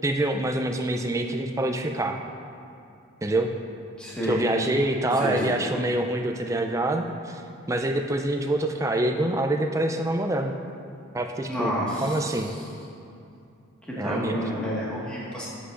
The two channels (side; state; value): both; normal; correlation 0.59